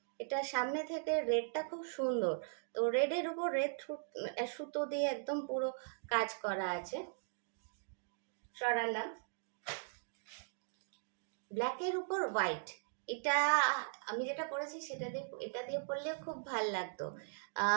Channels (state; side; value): silent; left; digital silence